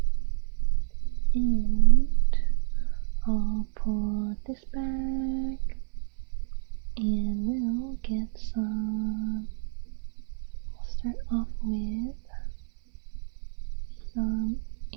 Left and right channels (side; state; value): left; silent; 59 dB below the other